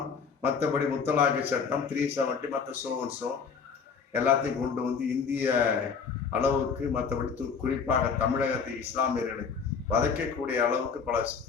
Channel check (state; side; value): quieter; right; 5.9 dB